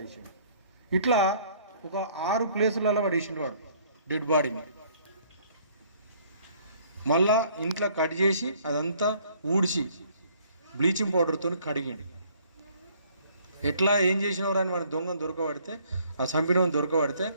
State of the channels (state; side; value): inverted; both; correlation -0.60